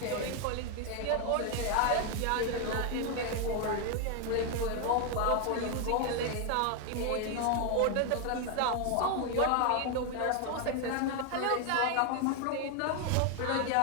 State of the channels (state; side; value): different; both; correlation 0.01